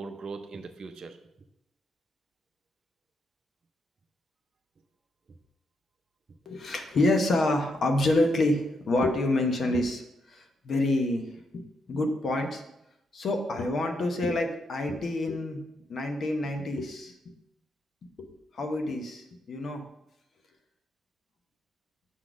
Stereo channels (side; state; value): both; normal; correlation 0.80